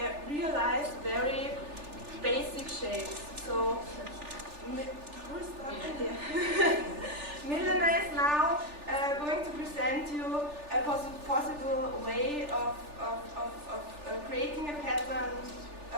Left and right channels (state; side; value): late; left; 3.4 ms